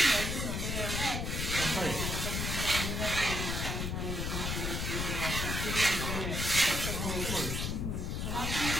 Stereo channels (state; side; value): noise; left; rumble, 1 dB below the sound